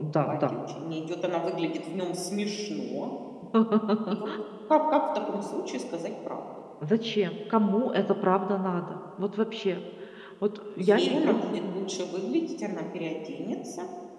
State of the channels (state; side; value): identical; both; correlation 1.00